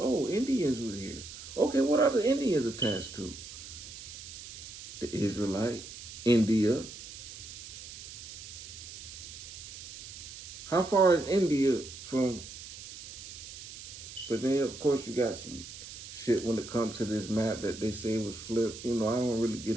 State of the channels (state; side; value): noise; right; hiss, 13 dB below the sound